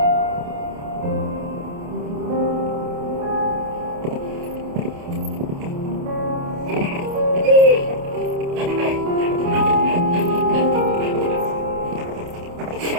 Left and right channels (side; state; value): left; late; 28 ms